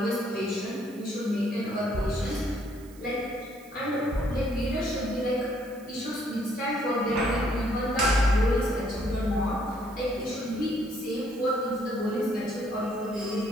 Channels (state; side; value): noise; right; hiss, 24 dB below the sound